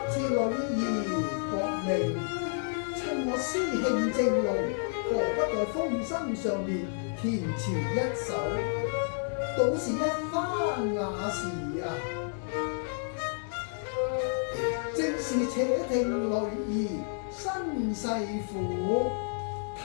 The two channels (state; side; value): silent; right; 58 dB below the other